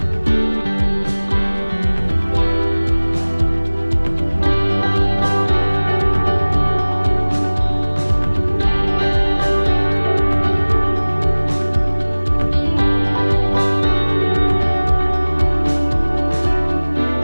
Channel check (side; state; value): both; inverted; correlation -1.00